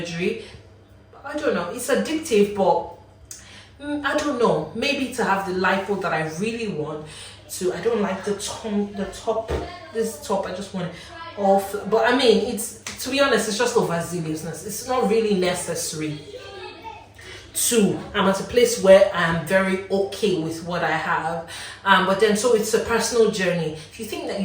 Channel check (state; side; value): identical; both; correlation 1.00